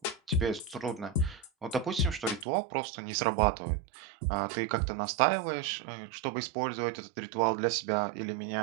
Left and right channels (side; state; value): left; drops out; at 2.5 s